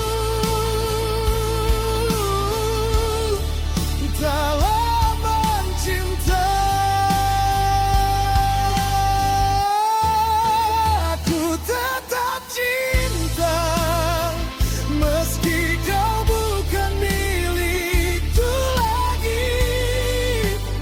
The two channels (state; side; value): identical; both; correlation 1.00